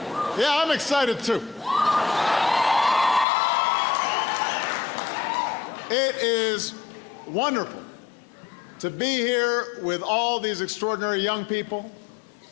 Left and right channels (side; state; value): right; drops out; at 3.2 s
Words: Yeah, I'm excited too. It is wonderful to be here with all these extraordinary young people,